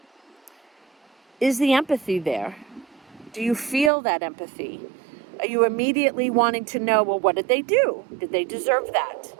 Is the empathy there? Do you feel that empathy? Are you immediately wanting to know, well, what did they do? Did they deserve that?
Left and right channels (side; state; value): left; drops out; at 3.9 s